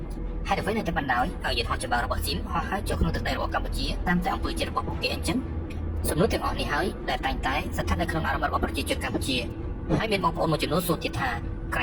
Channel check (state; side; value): identical; both; correlation 1.00